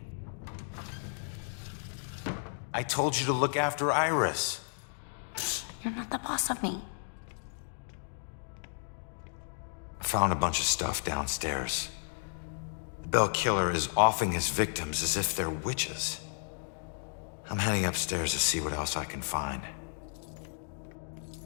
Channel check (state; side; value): silent; right; digital silence